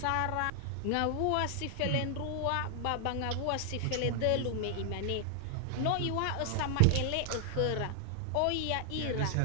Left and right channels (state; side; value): different; both; correlation 0.00